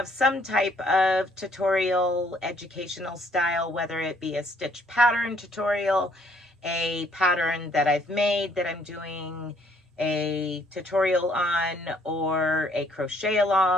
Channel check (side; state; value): both; normal; correlation 0.65